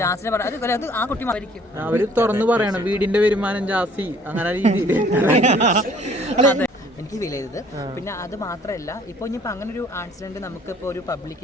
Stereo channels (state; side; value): normal; both; correlation 0.57